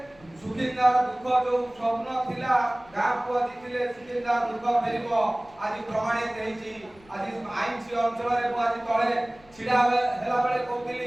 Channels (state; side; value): noise; left; rumble, 27 dB below the sound